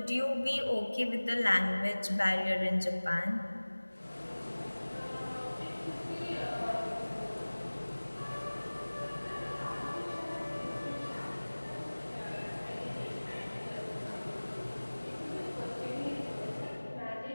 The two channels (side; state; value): both; inverted; correlation -1.00